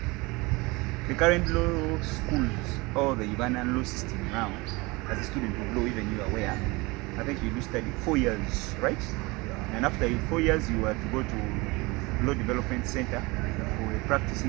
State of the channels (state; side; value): quieter; left; 24.4 dB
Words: the current law schools or the Ugandan law system now, as a student of law, even you are aware, I think you do study 4 years, right? Yeah. And after 4 years, you are to go to Law Development Center for a